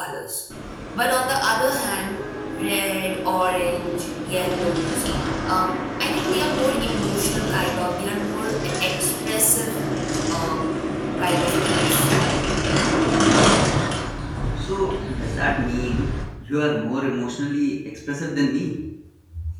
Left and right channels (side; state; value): both; identical; correlation 1.00